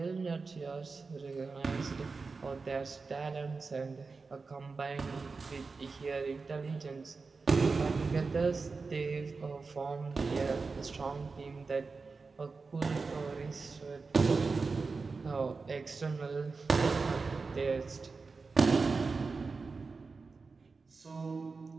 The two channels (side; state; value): left; quieter; 4.4 dB